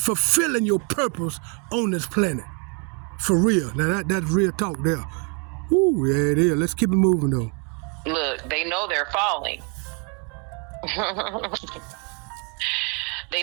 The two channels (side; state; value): left; quieter; 34.6 dB